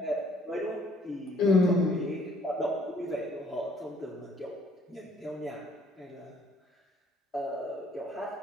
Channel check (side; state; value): both; normal; correlation 0.61